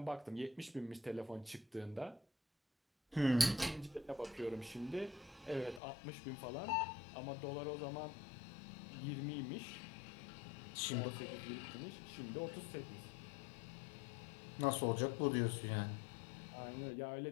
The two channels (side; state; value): right; drops out; at 5.8 s